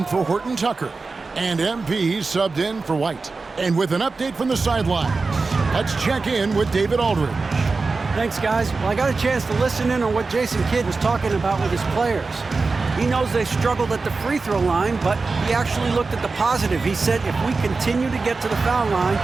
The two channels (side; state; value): left; quieter; 4.1 dB